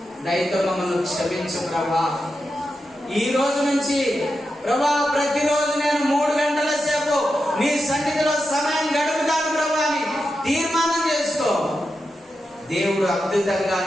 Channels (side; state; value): both; normal; correlation 0.88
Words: దయతో మమ్మల్ని క్షమించు ప్రభా. ఈ రోజు నుంచి ప్రభా, ప్రతిరోజు నేను 3 గంటల సేపు నీ సన్నిధిలో సమయం గడుపుతాను ప్రభా అని తీర్మానం చేసుకో. దేవుడు అద్భుతంగా